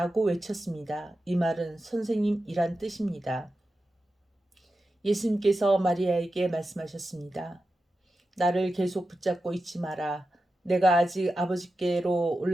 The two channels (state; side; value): normal; both; correlation 0.91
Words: 외쳤습니다. 이 말은 선생님이란 뜻입니다. 예수님께서 마리아에게 말씀하셨습니다. 나를 계속 붙잡고 있지 마라. 내가 아직 아버지께로